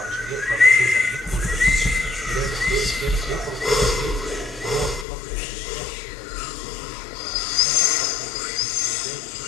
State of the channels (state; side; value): drops out; right; at 5.1 s